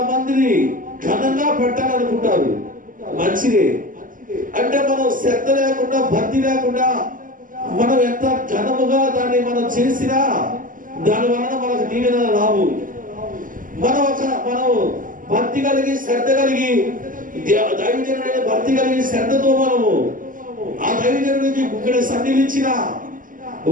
మందిని ఘనంగా పెట్టాలనుకుంటారు, మంచిదే. అంటే మనం శ్రద్ధ లేకుండా భక్తి లేకుండా మనం ఎంత ఘనముగా దాన్ని మనం చేసినా దాని వలన మనకు దీవెన రావు. మనం భక్తి కలిగి శ్రద్ధ కలిగి దైవజనుడైన భక్తి కలిగి శ్రద్ధతో మనము ఆ దైవజనుడికి ఇక్కడ సన్నిధించిన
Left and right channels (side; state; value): left; late; 0.39 ms